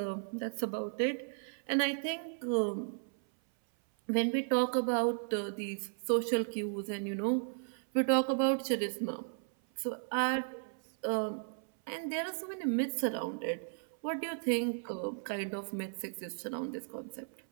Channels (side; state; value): left; silent; 54 dB below the other